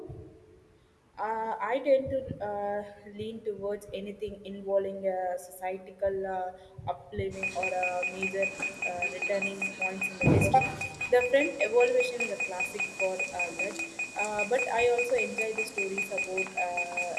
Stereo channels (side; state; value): both; identical; correlation 1.00